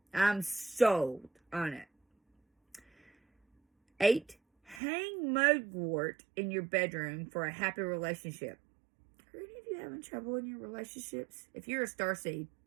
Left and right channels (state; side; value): drops out; left; at 4.8 s